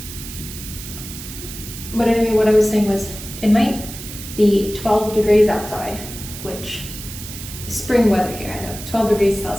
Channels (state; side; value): noise; right; hiss, 11 dB below the sound